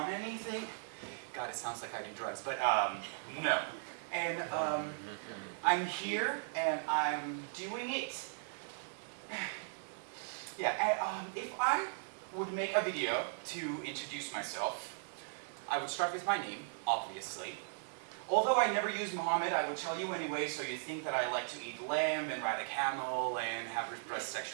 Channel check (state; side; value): silent; left; digital silence